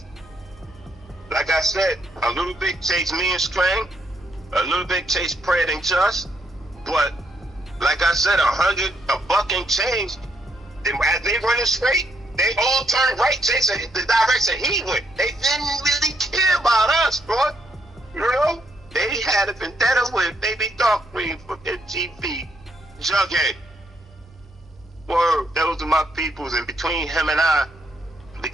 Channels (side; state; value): both; normal; correlation 0.75